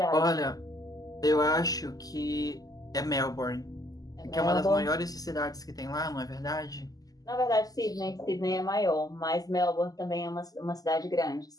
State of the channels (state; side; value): late; right; 0.17 ms